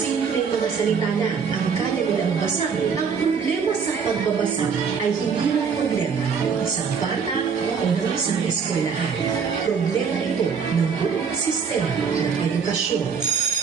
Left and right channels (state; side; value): quieter; left; 6.1 dB